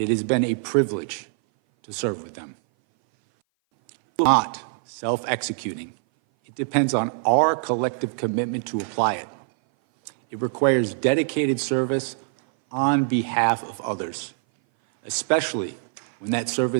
it has been a privilege to serve with them. Not self-executing. It depends on our collective commitment to apply it. It requires dedicated service on behalf of others, especially when that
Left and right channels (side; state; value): left; silent; 58 dB below the other